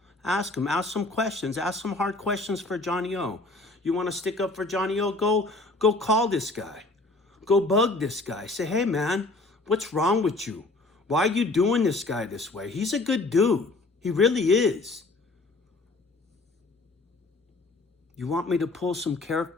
Ask him, ask some questions, ask some hard questions for Johnny O. You want to stick up for Johnny O? Go call this guy. Go bug this guy. Say, hey man, what's wrong with you? Why are you doing this guy this way? He's a good dude. He really is. You want me to pull some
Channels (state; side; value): quieter; right; 3.1 dB